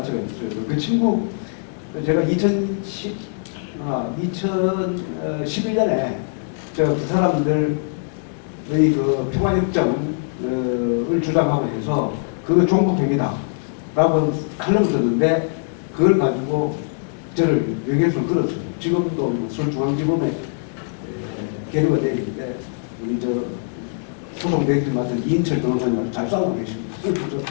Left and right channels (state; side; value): silent; right; digital silence